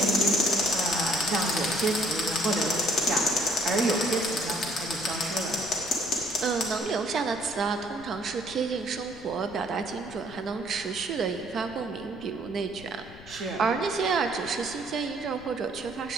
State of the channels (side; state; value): left; noise; rumble, 19 dB below the sound